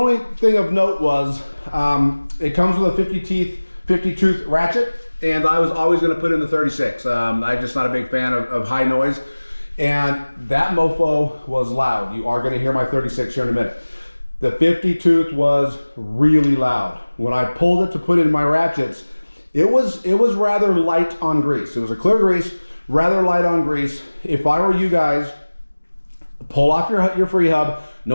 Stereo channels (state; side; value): inverted; both; correlation -1.00